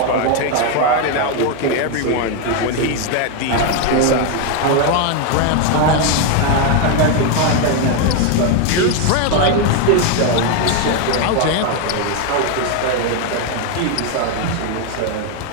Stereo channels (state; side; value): different; both; correlation 0.01